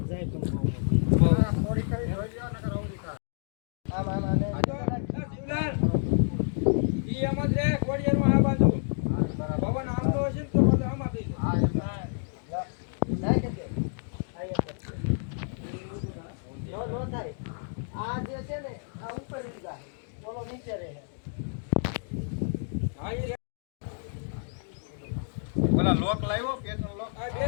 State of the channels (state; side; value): silent; right; digital silence